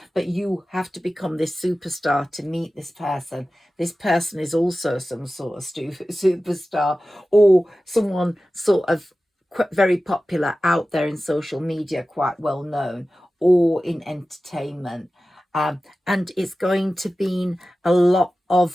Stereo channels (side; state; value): both; normal; correlation 0.95